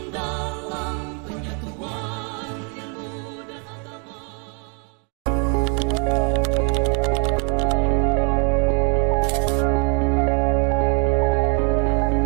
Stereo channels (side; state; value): left; quieter; 38.1 dB